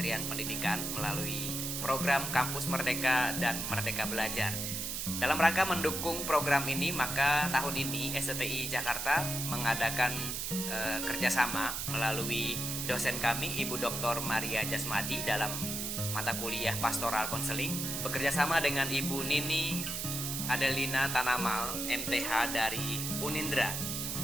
Pendidikan melalui program Kampus Merdeka dan Merdeka Belajar. Dalam rangka mendukung program ini, maka tahun ini STI Jakarta mengadakan kerjasama melalui dosen kami, Ibu Dr. Maria Jasmadi, dalam mata kuliah Pastoral Konseling, bekerjasama dengan Ibu Nini Adelina Tanamal, MTH dari Unindra.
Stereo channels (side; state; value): right; noise; hiss, 3 dB below the sound